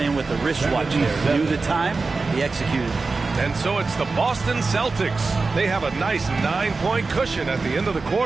with a wristwatch there. Knew the time, he executed. And so it's the Boston Celtics. They have a nice 9-point cushion at the end of the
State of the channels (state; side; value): quieter; left; 4.0 dB